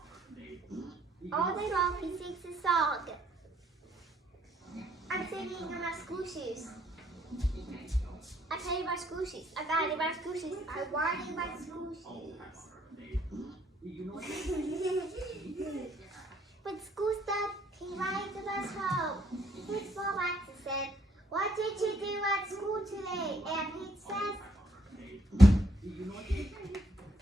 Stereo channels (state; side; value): normal; both; correlation 0.69